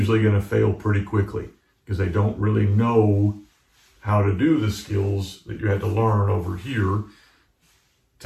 going to fail pretty quickly because they don't really know how to do the skills that you had to learn over here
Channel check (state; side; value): identical; both; correlation 1.00